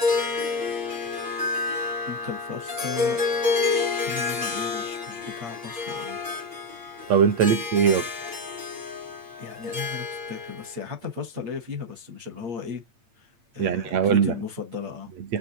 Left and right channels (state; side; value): late; left; 8.6 ms